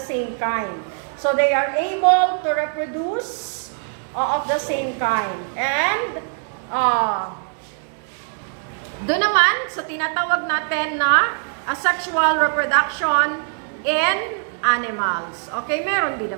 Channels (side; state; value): left; silent; 59 dB below the other